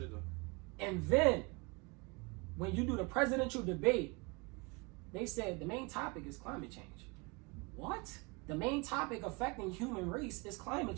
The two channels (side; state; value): left; quieter; 28.7 dB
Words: And then when you do the presidential debate, they said the main topic is climate change. What? The main topic affecting human race is climate